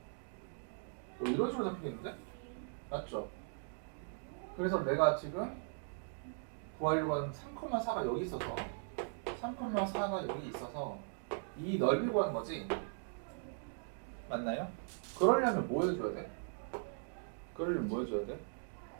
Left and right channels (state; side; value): silent; left; digital silence